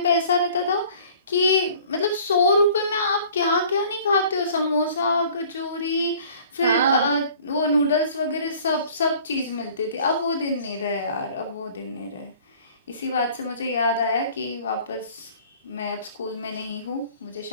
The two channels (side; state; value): both; inverted; correlation -0.51